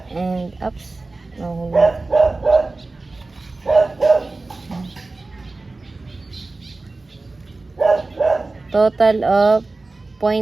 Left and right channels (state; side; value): quieter; left; 3.4 dB